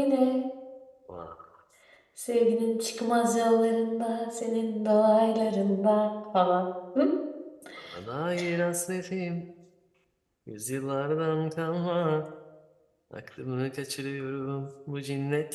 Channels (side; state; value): both; identical; correlation 1.00